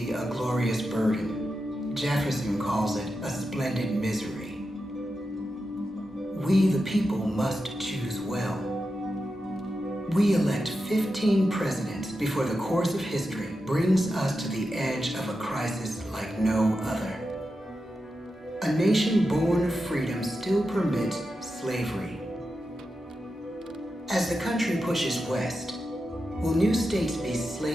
a glorious burden. Jefferson calls it a splendid misery. We, the people, must choose well. We elect 15 presidents before the course of history brings us to the edge of a crisis like no other. A nation born of freedom still permits slavery. As the country pushes west, will new states be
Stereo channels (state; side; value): normal; both; correlation 0.89